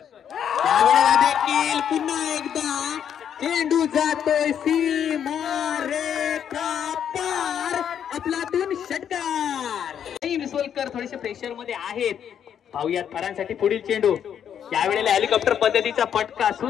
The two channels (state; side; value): quieter; right; 8.8 dB